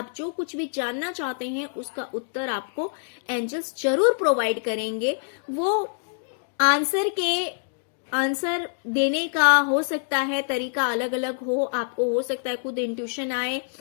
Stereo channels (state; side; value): silent; right; digital silence